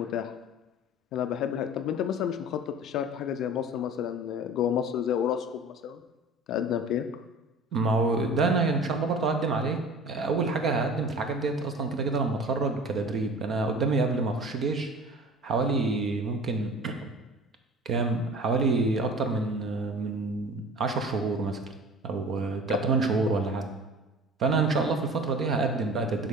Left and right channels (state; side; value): normal; both; correlation 0.41